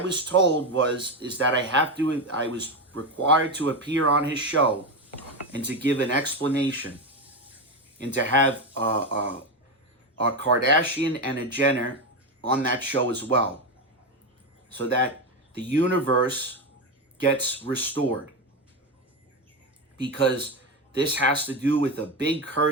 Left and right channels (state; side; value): normal; both; correlation 0.14